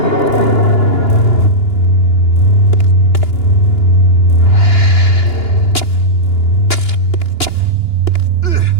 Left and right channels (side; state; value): right; late; 2.9 ms